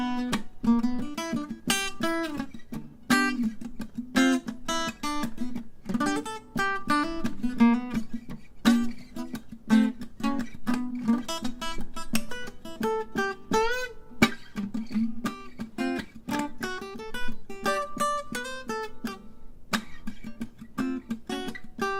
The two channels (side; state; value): both; identical; correlation 1.00